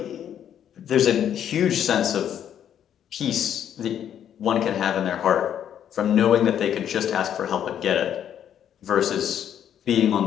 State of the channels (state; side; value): quieter; right; 9.7 dB